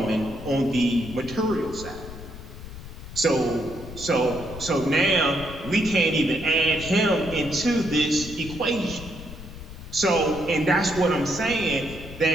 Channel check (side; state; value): left; noise; rumble, 13 dB below the sound